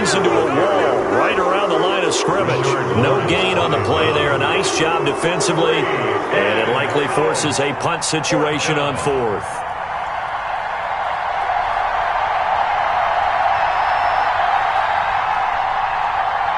into a wall right around the line of scrimmage. No gain on the play there. A nice job defensively. And it likely forces a punt situation on 4th.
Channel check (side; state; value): both; identical; correlation 1.00